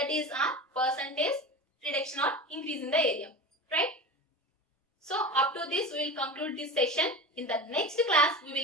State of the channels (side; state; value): both; normal; correlation 0.30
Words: is our percentage reduction or increase in the area. Right. So up to this we will conclude this session. In the next class we